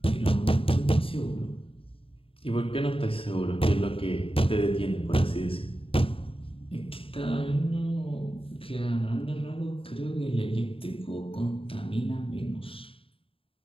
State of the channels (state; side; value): late; right; 0.27 ms